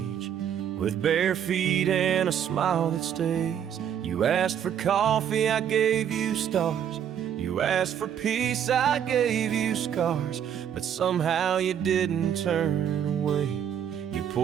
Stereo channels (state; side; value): quieter; left; 9.1 dB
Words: with bare feet and a smile that stays. You asked for coffee, I gave you stars. You asked for peace, I gave you scars. But somehow you didn't turn away. You